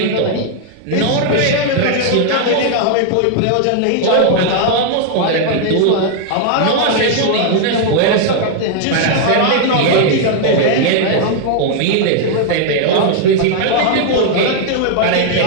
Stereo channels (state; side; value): different; both; correlation 0.00